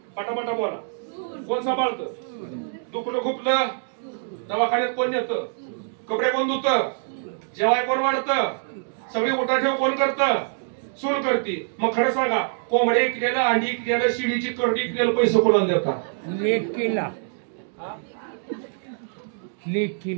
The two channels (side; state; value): left; silent; digital silence